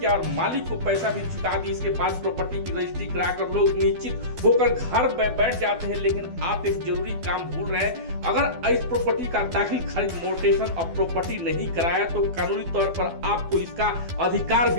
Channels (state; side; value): late; left; 12 ms